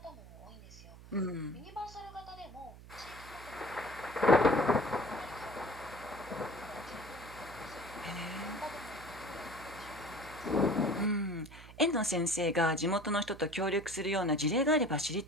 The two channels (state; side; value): noise; right; hum, 18 dB below the sound